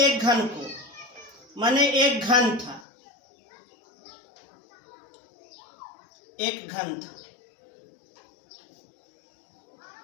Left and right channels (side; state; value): right; drops out; at 2.9 s